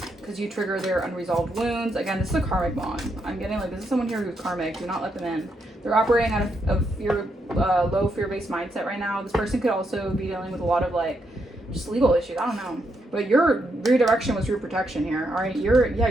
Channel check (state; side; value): normal; both; correlation 0.79